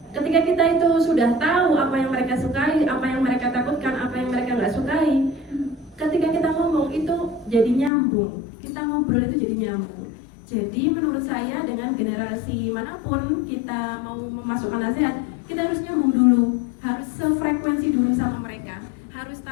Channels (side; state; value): right; drops out; at 7.9 s